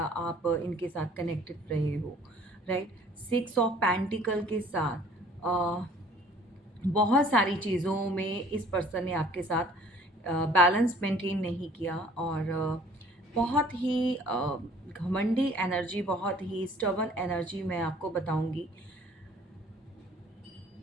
आप इनके साथ कनेक्टेड रहे हो, राइट? 6 ऑफ पेंटिकल के साथ बहुत सारी चीज़ों में इस पर्सन ने आपके साथ बैलेंस मेंटेन नहीं किया, और बहुत ही घमंडी एनर्जी, बहुत ही स्टबर्न एनर्जी मैं आपको बताऊंगी।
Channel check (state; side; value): normal; both; correlation 0.54